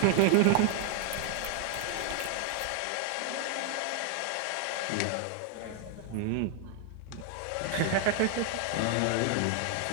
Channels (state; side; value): different; both; correlation 0.00